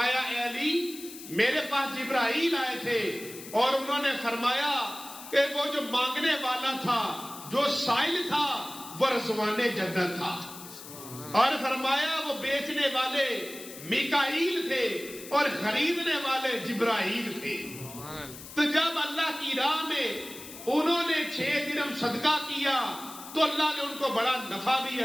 اے علی میرے پاس جبرائیل آئے تھے اور انہوں نے فرمایا کہ وہ جو مانگنے والا تھا، جو سائل تھا، وہ رضوان جنت تھا، اور فرمایا وہ بیچنے والے میکائیل تھے اور خریدنے والے جبرائیل تھے۔ تو جب اللہ کی راہ میں انہوں نے 6 درہم صدقہ کیا تو اللہ نے ان کو بڑا نفع بھی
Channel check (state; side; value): noise; left; hiss, 14 dB below the sound